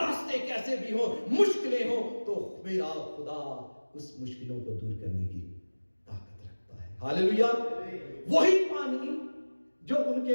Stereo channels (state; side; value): inverted; both; correlation -1.00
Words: कैसे भी हो, मुश्किलें हो, तो मेरा खुदा उस मुश्किलों को दूर करने की ताकत रखता है। हालेलुया। वही पानी जो उनके